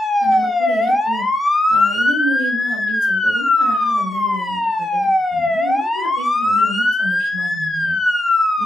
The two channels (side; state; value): both; normal; correlation 0.86